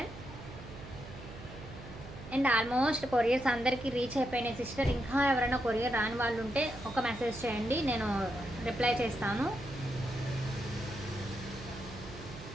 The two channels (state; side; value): noise; right; hum, 14 dB below the sound